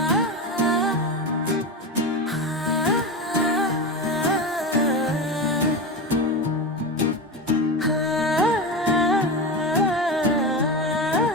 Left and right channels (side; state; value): both; normal; correlation 0.21